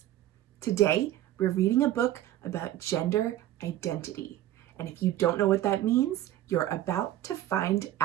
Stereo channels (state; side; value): quieter; left; 13.5 dB